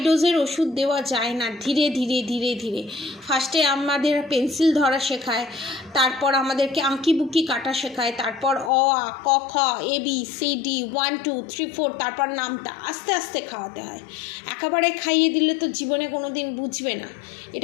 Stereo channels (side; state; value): right; drops out; at 8.7 s